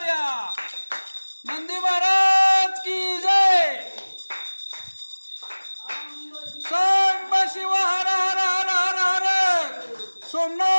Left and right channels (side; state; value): both; inverted; correlation -1.00